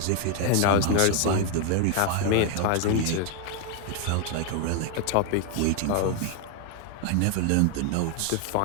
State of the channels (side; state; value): both; different; correlation 0.01